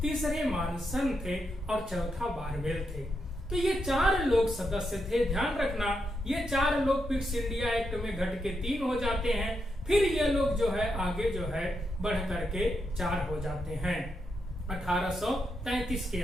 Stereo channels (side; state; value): both; normal; correlation 0.83